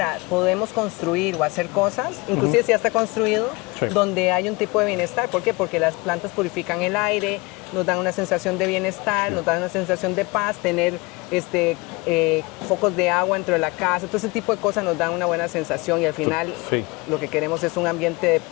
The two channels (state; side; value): quieter; right; 25.4 dB